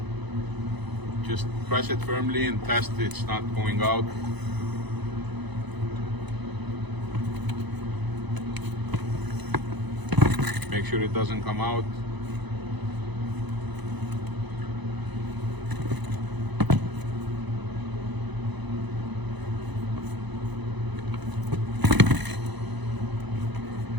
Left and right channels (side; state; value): left; late; 1.0 ms